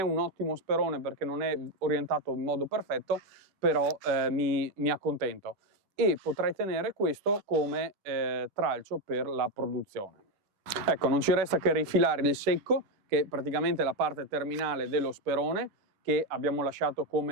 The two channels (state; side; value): late; left; 10 ms